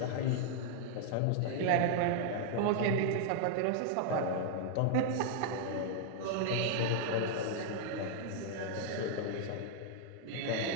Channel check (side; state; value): both; different; correlation 0.00